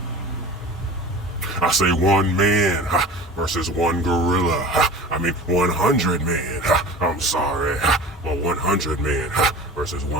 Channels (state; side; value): normal; both; correlation 0.38